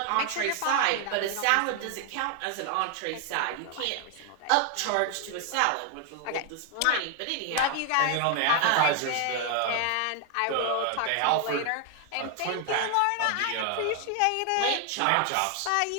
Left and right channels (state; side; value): different; both; correlation 0.00